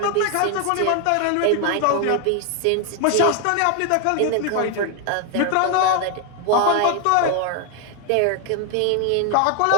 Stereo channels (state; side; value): different; both; correlation 0.01